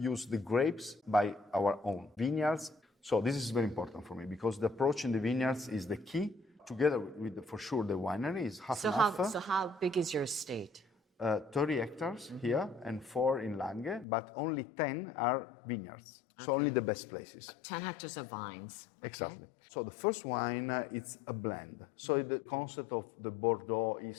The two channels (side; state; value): right; drops out; at 14.1 s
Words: the grapes by our own vineyards. So this is very important for me because the approach in the vineyards is the key. Together with, for sure, the winery is half and half. So how big is your estate? 30 hectares here and 4 in Langhe, but only 10 are vineyards. So only the best places. 10 hectares of vines. Okay. Exactly. So the first wine, it's a blend. So the concept of the Bordeaux